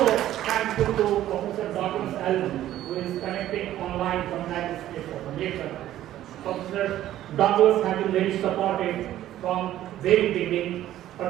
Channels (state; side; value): quieter; left; 13.1 dB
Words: thankful to Professor Douglas Allen, who is connecting online from the United States of America. Professor Douglas has been very supportive from very beginning,